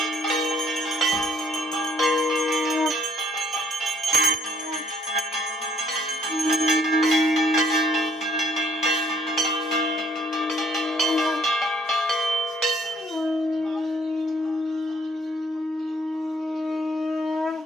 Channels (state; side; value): normal; both; correlation 0.64